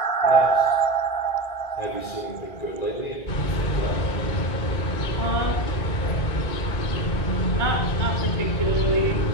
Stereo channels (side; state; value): right; late; 1.8 ms